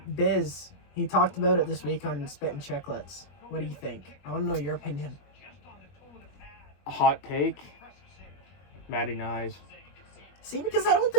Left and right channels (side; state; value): right; late; 21 ms